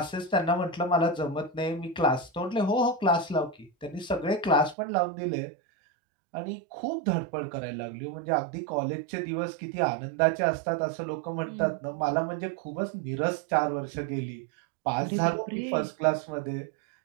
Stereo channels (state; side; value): drops out; left; at 4.8 s